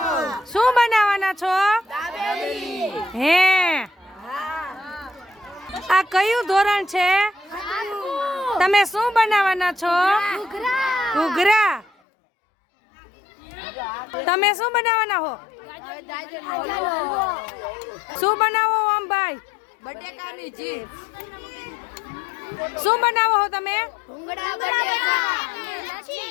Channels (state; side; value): drops out; right; at 11.9 s